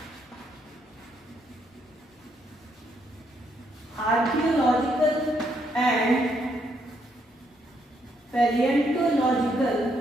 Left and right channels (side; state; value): both; normal; correlation 0.74